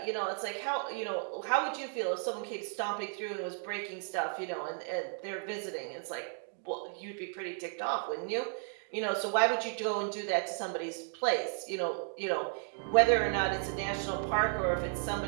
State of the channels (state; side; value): silent; left; 55 dB below the other